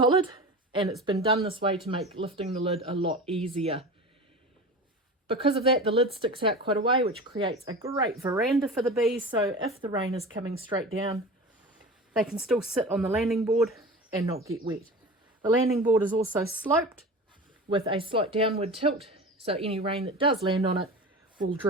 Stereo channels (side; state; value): both; normal; correlation 0.33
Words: and it's been done this way to make lifting the lid a lot easier. Because of that, the lid sticks out quite a way, which creates a great veranda for the bees. So if the rain is coming straight down, they can still sit on the landing board and not get wet. The landing board is also sloped with a slight downward tilt, so any rain that does land on it will